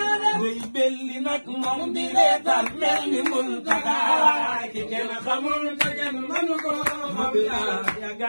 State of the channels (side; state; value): both; inverted; correlation -1.00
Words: belli nag moom di reetaan mel ni Muntaxa ki kenn xamul te kenn mënu ko xam ya